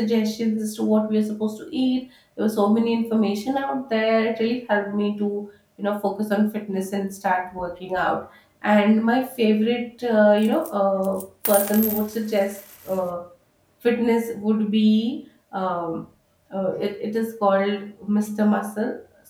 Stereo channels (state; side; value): identical; both; correlation 1.00